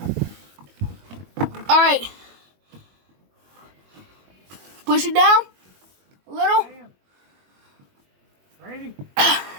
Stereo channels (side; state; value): left; late; 21 ms